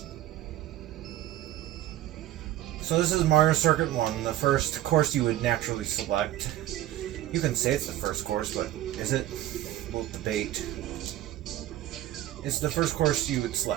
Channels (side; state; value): left; quieter; 14.0 dB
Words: So this is Mario Circuit 1, the first course you would naturally select. You can say it's the first course, but is it? We'll debate. It's the first course you would